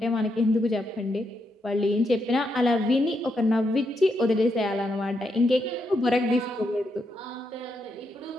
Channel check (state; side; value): normal; both; correlation 0.81